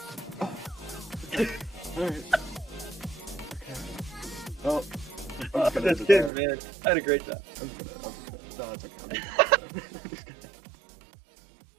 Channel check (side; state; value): left; drops out; at 6.3 s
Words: Alright. Okay. Well, I'm just That's good, man. I had a great job.